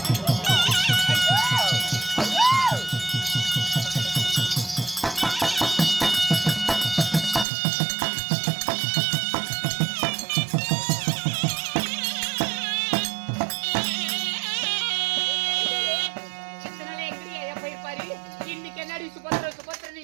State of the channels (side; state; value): left; drops out; at 7.5 s